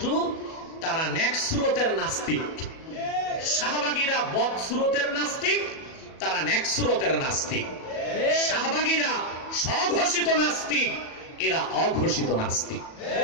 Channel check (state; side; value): late; right; 37 ms